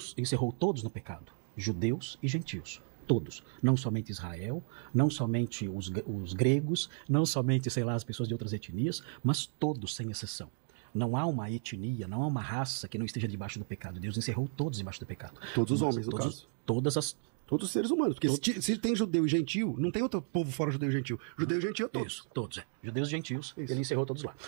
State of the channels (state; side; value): silent; left; 55 dB below the other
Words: encerrou todos no pecado, judeus e gentios. Todos, não somente Israel, não somente os gregos, não somente, as pessoas de outras etnias, mas todos, sem exceção. Não há uma etnia, não há uma raça que não esteja debaixo do pecado. Deus encerrou todos debaixo do pecado. Todos os homens, no caso. Todos os seres humanos. Porque se tem judeu e gentil, não tem outro povo fora judeu e gentil. Judeu e gentil é todos. Isso, todos. Judeus e gentios. Isso. Ele encerrou todos lá.